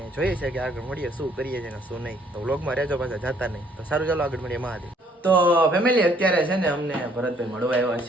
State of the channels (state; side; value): normal; both; correlation 0.63